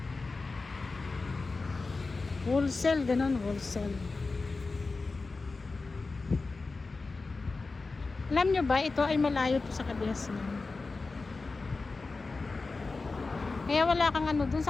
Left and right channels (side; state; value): right; quieter; 3.8 dB